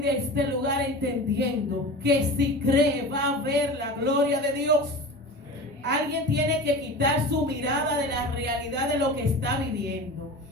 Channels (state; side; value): normal; both; correlation 0.33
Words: de este lugar entendiendo que si cree va a ver la gloria de Dios. Alguien tiene que quitar su mirada de la realidad de lo que está viviendo,